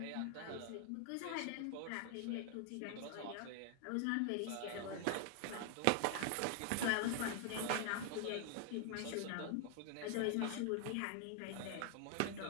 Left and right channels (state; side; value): different; both; correlation 0.00